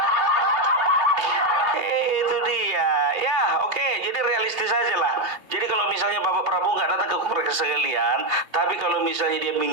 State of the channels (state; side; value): late; left; 2.8 ms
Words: Itu dia. Ya, oke. Jadi realistis aja lah. Jadi kalau misalnya Bapak Prabowo nggak datang ke Kongres sekalian, tapi kalau misalnya dia